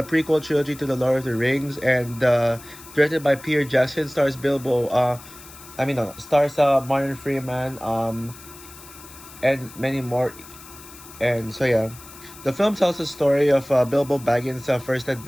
prequel trilogy to the Lord of the Rings, and directed by Peter Jackson, stars Bilbo. Stars Martin Freeman, and many more. And so yeah, the film tells the story of Bilbo Baggins' first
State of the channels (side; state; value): left; noise; hiss, 18 dB below the sound